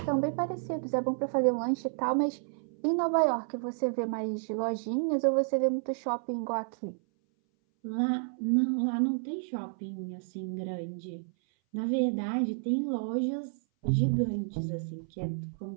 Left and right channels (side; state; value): left; silent; 57 dB below the other